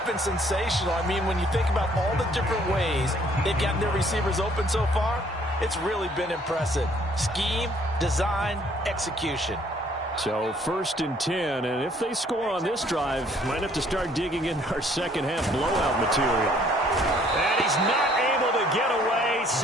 been sensational. I mean, when you think about all the different ways they've gotten their receivers open so far, it's really been impressive. Scheme, design, execution. So 1st and 10, and if they score on this drive, might have to start digging in our second half blowout material. And he's not able to get away.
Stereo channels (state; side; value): normal; both; correlation 0.61